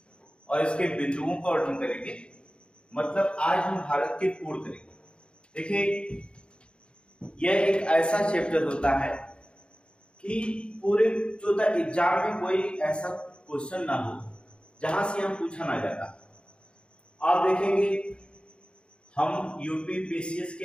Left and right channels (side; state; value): right; late; 0.055 ms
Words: और इसके बिंदुओं का वर्णन करेंगे। मतलब आज हम भारत के पूर्ण करेंगे। देखिए, यह एक ऐसा चैप्टर होता है कि पूरे जो एग्जाम में कोई ऐसा क्वेश्चन ना हो जहां से हम पूछा ना जाता। आप देखेंगे हम यूपी पीसीएस